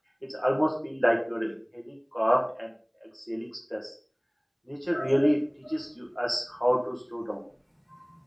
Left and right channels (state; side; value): identical; both; correlation 1.00